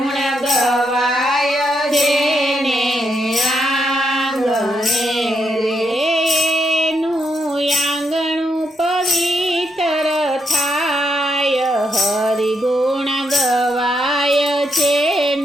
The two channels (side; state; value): both; normal; correlation 0.79